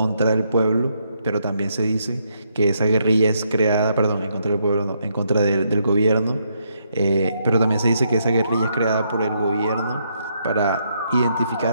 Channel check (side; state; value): both; inverted; correlation -0.76